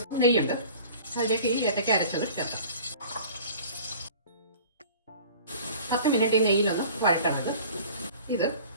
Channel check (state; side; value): inverted; both; correlation -0.44